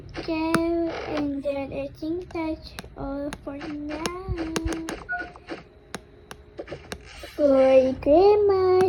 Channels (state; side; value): identical; both; correlation 1.00